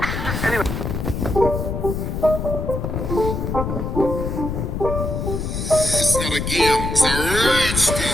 Anyway. It's not a game, it's a rich.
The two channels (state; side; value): noise; left; rumble, 3 dB below the sound